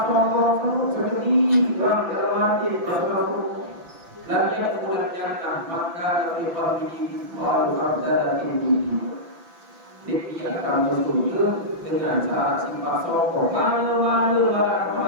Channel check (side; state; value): left; late; 6.0 ms